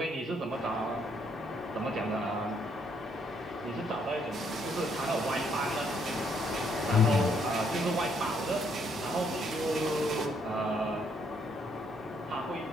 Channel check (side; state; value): both; normal; correlation 0.70